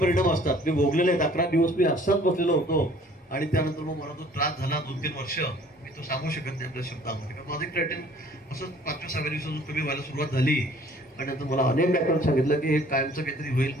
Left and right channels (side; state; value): both; normal; correlation 0.54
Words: असतात. मी भोगलेले आहेत. 11 दिवस मी असाच बसलेलो होतो आणि त्यानंतर मग मला तो त्रास झाला 2-3 वर्ष. मी तो सांगू शकत नाही आपल्या शब्दामध्ये, कारण माझं क्रिएटिन असंच 5व्या-6व्या दिवसातून कमी व्हायला सुरुवात झाली. आणि नंतर मला अनेक डॉक्टरांनी सांगितलं की हे कायमचं काहीतरी होईल.